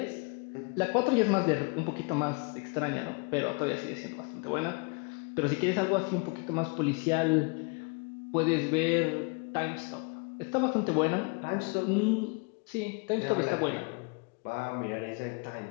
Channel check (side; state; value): right; quieter; 31.9 dB